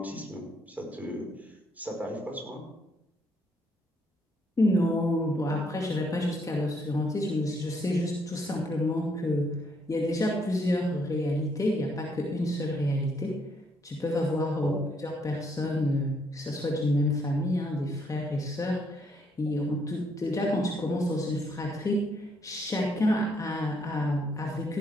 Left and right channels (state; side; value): normal; both; correlation 0.72